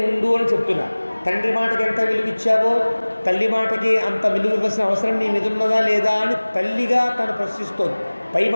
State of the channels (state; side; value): inverted; both; correlation -1.00